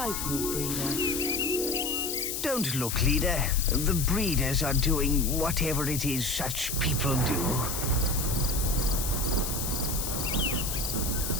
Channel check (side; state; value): left; noise; hiss, 3 dB below the sound